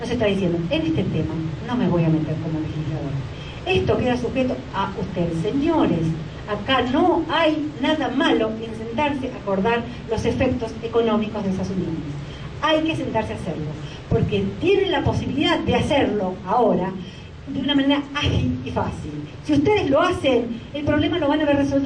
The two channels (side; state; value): both; identical; correlation 1.00